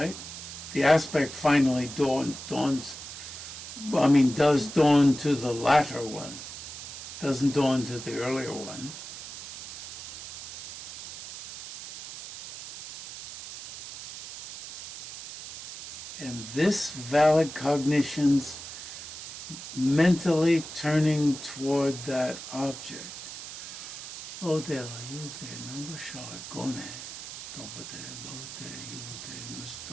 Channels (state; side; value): noise; right; hiss, 11 dB below the sound